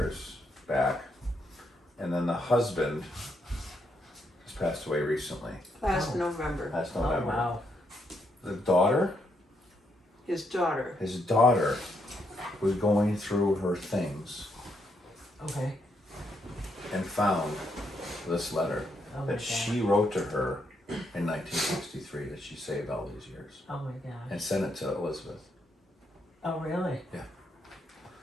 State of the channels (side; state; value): both; normal; correlation 0.77